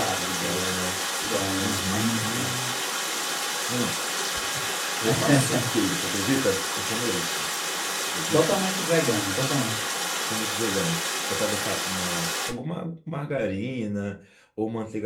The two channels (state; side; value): identical; both; correlation 1.00